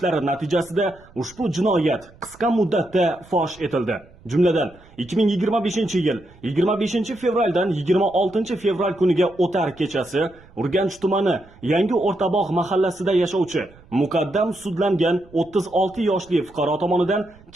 natijasida ushbu jinoyat qisqa muddatda fosh etildi. Jumladan 2025-yil 25 fevraldan 26 fevral kuniga o'tar kechasi Urganch tumani Yangi O'rtabog' mahallasida yashovchi muqaddam sudlangan 36 yoshli fuqaro tomonidan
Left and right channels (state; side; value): noise; right; rumble, 25 dB below the sound